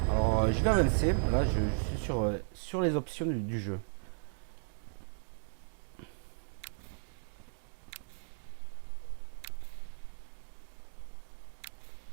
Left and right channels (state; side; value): silent; left; digital silence